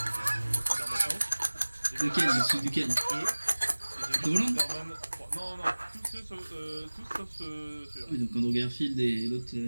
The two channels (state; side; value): inverted; both; correlation -1.00